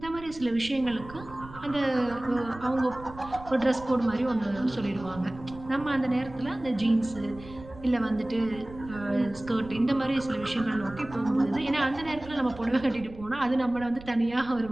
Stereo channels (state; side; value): noise; right; rumble, 17 dB below the sound